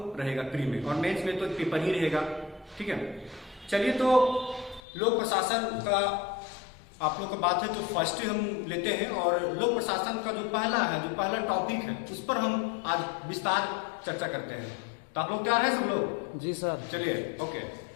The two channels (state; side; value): drops out; right; at 4.8 s